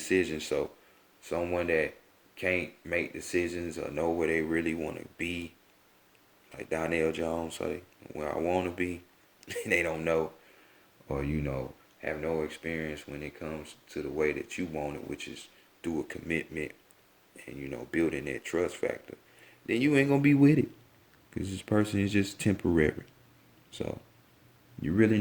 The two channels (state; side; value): identical; both; correlation 1.00